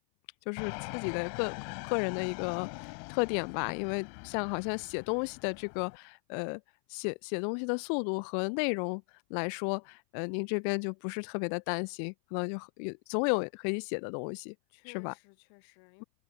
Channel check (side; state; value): right; silent; 54 dB below the other